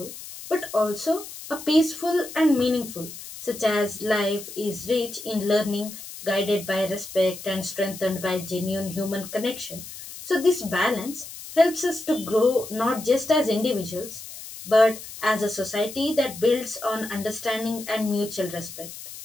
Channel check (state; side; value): noise; left; hiss, 13 dB below the sound